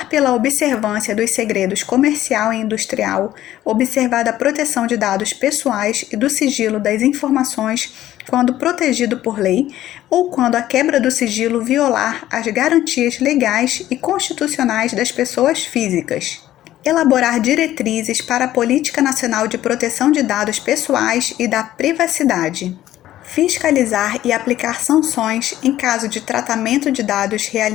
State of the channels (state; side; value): quieter; right; 13.5 dB